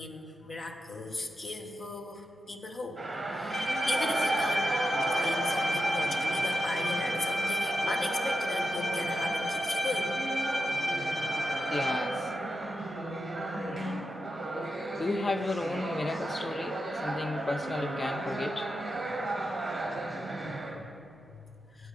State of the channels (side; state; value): both; normal; correlation 0.89